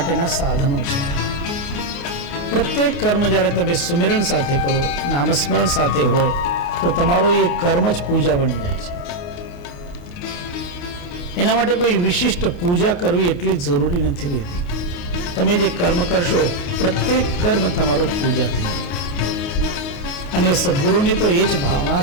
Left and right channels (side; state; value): right; late; 28 ms